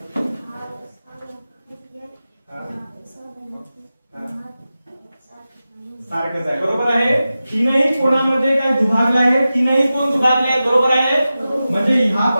सारखंच आहे. बरोबर आहे. तीनही कोणामध्ये काय दुभागले आहे, तीनही कोण दुभागले आहेत. बरोबर आहे. म्हणजे हा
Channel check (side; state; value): both; inverted; correlation -0.94